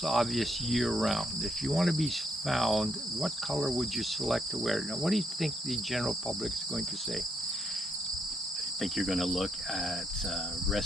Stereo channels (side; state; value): both; normal; correlation 0.76